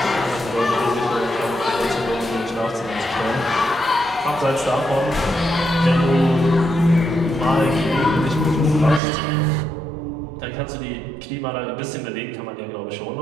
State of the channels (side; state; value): left; drops out; at 9.0 s